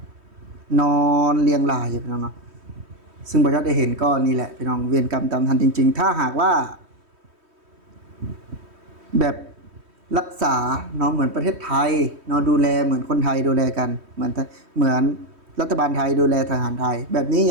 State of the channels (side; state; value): left; late; 3.1 ms